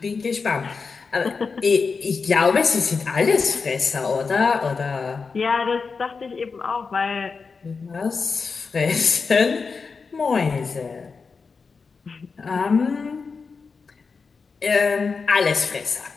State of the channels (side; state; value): right; quieter; 4.9 dB